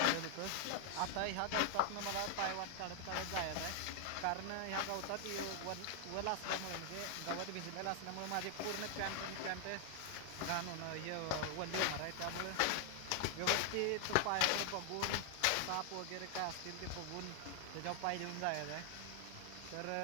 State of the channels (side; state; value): both; different; correlation 0.00